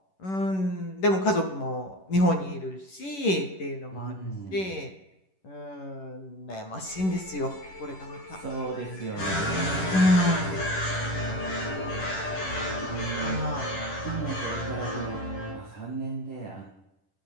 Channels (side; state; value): right; late; 11 ms